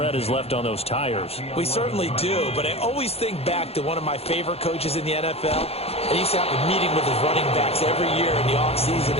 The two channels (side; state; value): right; late; 0.29 ms